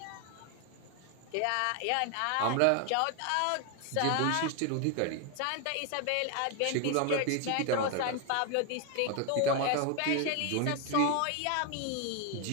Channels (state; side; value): different; both; correlation 0.01